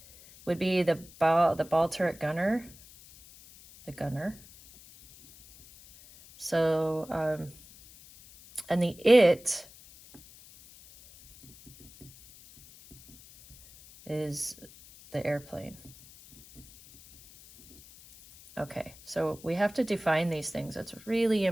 would be the ball turret gunner, the gunner. So, and the it is the airplane. Okay, so we have to define these things. It's really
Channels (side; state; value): left; noise; hiss, 22 dB below the sound